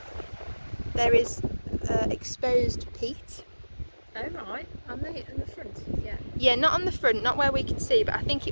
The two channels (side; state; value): both; inverted; correlation -1.00